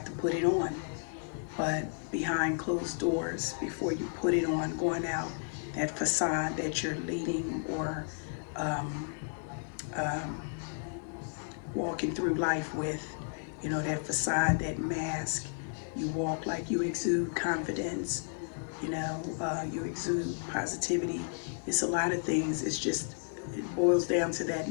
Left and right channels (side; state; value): right; silent; 56 dB below the other